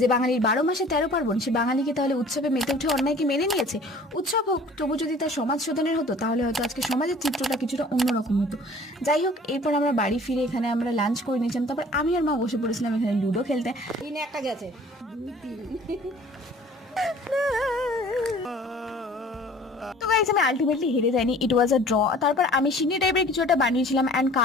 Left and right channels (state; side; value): normal; both; correlation 0.50